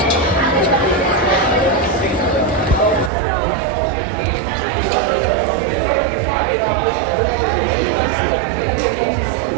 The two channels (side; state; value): left; drops out; at 3.1 s